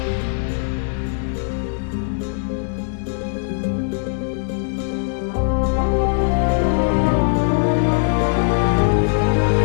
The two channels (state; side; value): silent; right; 66 dB below the other